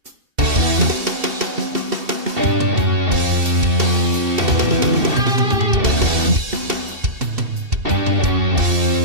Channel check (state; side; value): late; left; 2.7 ms